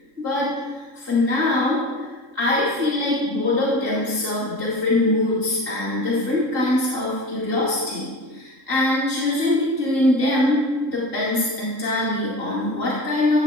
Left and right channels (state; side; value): late; left; 3.7 ms